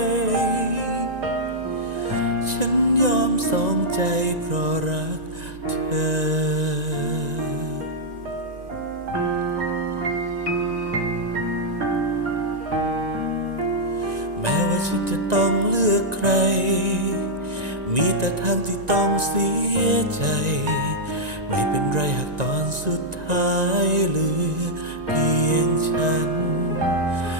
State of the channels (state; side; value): late; left; 1.9 ms